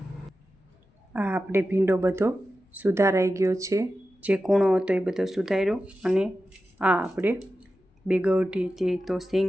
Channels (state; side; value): normal; both; correlation 0.92